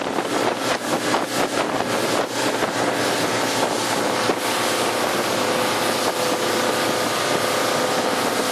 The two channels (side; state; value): both; identical; correlation 1.00